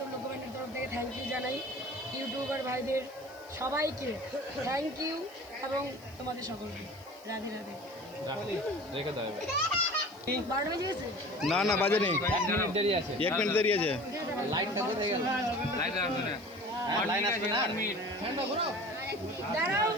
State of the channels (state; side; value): noise; right; hiss, 25 dB below the sound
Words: লোকব্যান্ডের তরফ থেকে থ্যাংক ইউ জানাই। ইউটিউবার ভাইদের সবাইকে থ্যাংক ইউ, এবং তোমাদের সকলকে রাধে রাধে। 12টা বেজে গেছে? না না বাজে নেই, 1 মিনিট দেরি আছে। দাঁড়াও,